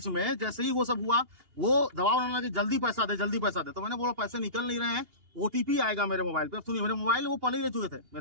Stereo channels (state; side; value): late; left; 2.8 ms